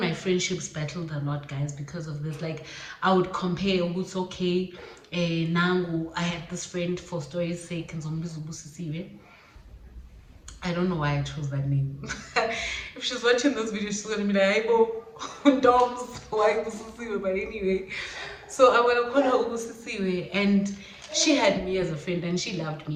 friendships battled a lot, guys, because of this. Like, I would compare what's okay. Nangu, I had this friend, for story's sake, and I don't know why I chose that name. If she's watching this video, she's gonna be like, Doms, why Ubusisiwe? But anyway, so I'm gonna call her Ubusisiwe, and she had me as a friend, and she loved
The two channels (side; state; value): both; identical; correlation 1.00